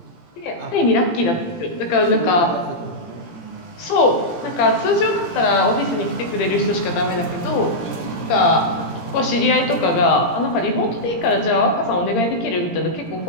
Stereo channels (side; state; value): right; late; 17 ms